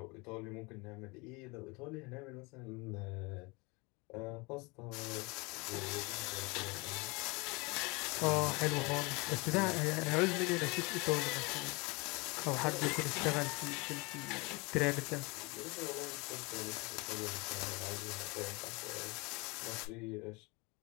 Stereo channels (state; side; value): quieter; right; 27.0 dB